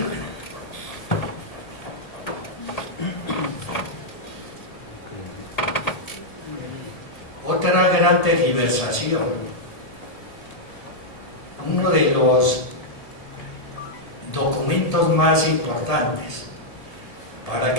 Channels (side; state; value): right; late; 1.8 ms